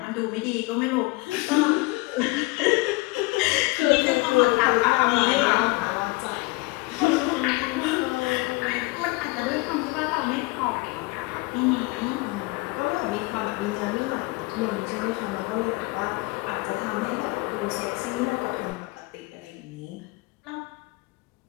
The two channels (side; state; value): right; quieter; 24.3 dB